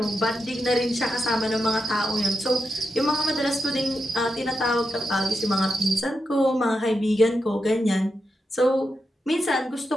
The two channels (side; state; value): both; normal; correlation 0.86